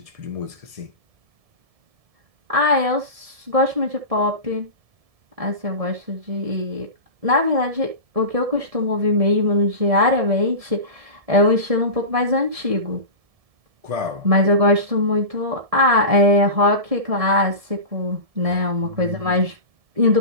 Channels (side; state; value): left; late; 1.7 ms